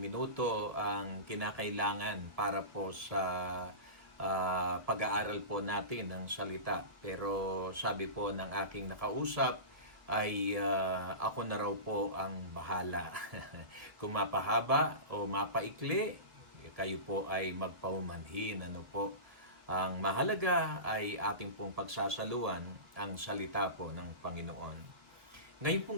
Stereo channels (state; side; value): late; left; 1.5 ms